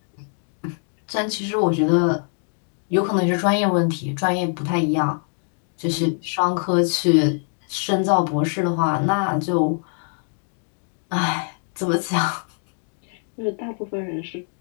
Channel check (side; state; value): right; silent; 56 dB below the other